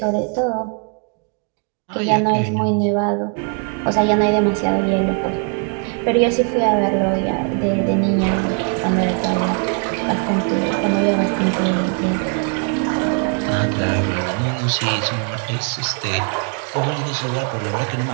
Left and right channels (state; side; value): quieter; left; 38.5 dB